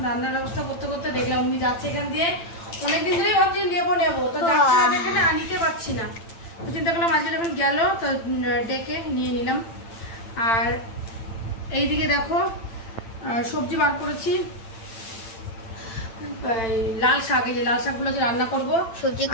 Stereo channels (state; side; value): late; right; 8.9 ms